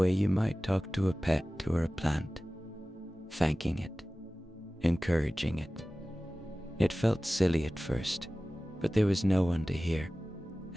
you might talk to a pet or a plant, thanking it, encouraging it. It felt silly at first, but there was no one to hear,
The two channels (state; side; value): normal; both; correlation 0.97